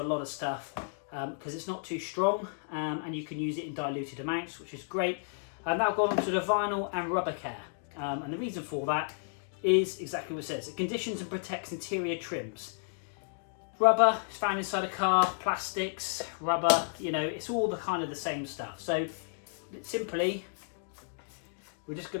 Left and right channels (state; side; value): silent; right; digital silence